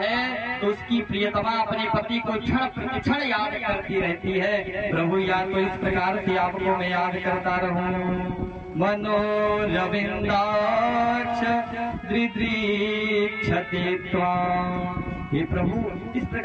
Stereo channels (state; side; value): identical; both; correlation 1.00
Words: तो उसकी प्रियतमा अपने पति को क्षण प्रतिक्षण याद करती रहती है। प्रभु, या तो इस प्रकार से आपको मैं याद करता रहूं। मनोरविन्दाक्ष दृदृक्षते त्वाम्। हे प्रभु, इस